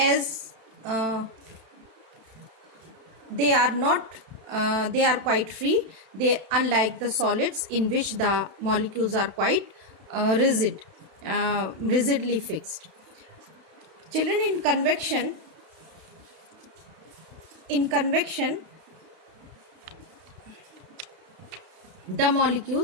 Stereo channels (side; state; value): left; late; 32 ms